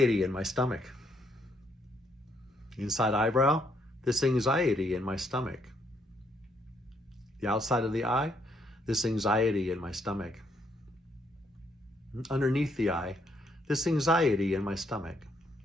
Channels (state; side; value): normal; both; correlation 0.72